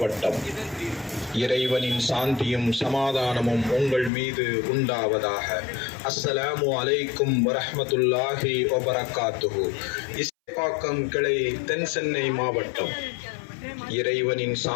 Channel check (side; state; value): right; drops out; at 4.1 s